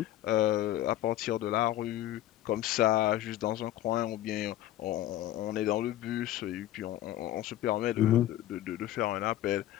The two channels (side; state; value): right; quieter; 13.5 dB